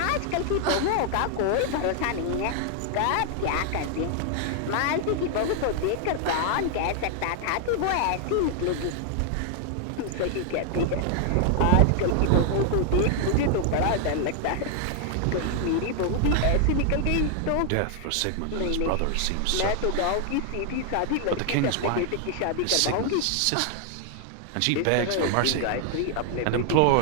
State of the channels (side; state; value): both; different; correlation 0.00